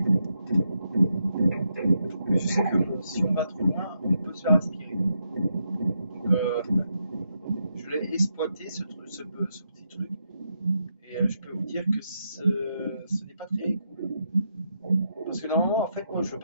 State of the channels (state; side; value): inverted; both; correlation -0.81